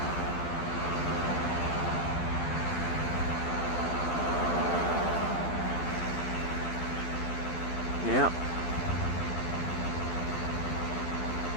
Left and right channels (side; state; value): right; late; 12 ms